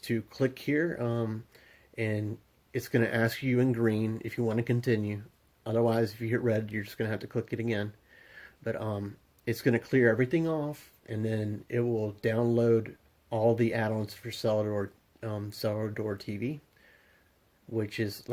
click here, and it's going to ask you in green if you want to continue. Otherwise, if you hit red, you're just going to have to click it again. But it's going to clear everything off, and then it will download all the add-ons for Cellar Door TV, which is,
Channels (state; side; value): identical; both; correlation 1.00